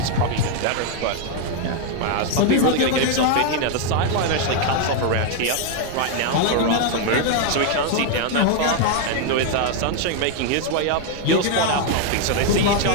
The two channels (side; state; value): both; different; correlation 0.01